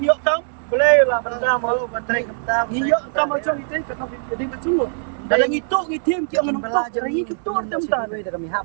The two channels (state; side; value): silent; left; 63 dB below the other